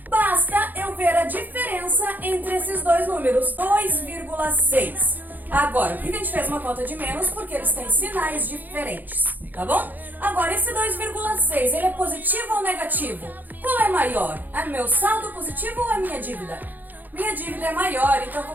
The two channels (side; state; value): left; late; 0.085 ms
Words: Basta eu ver a diferença entre esses dois números, 2,6. Agora, por que a gente fez uma conta de menos? Porque eles têm sinais diferentes, tá bom? Agora, esse 2,6, ele é positivo ou negativo? Qual é maior? É meu saldo positivo ou a minha dívida? Minha dívida é maior, então eu